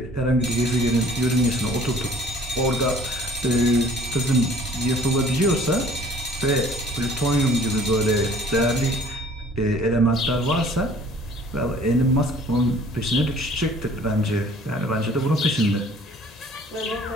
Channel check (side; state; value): both; normal; correlation 0.53